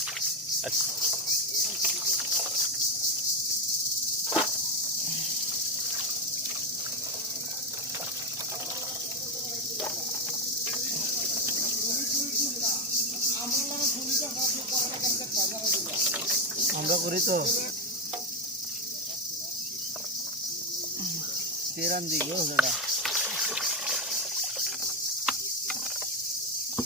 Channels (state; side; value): normal; both; correlation 0.09